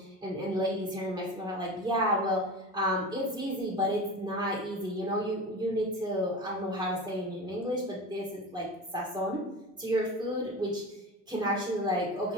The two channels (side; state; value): both; normal; correlation 0.30